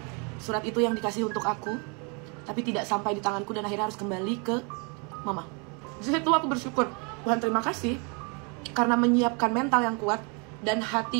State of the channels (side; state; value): left; quieter; 33.8 dB